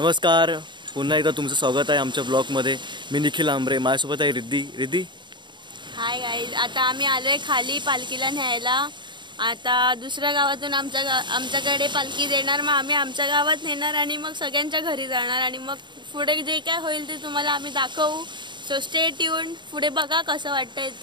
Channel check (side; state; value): left; late; 0.22 ms